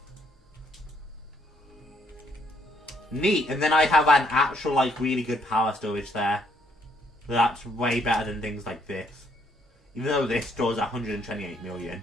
Neat, and then I have an actual like really good power storage there. So that's way better than things like this. Even though this stores 128 million.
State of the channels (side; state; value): both; normal; correlation 0.69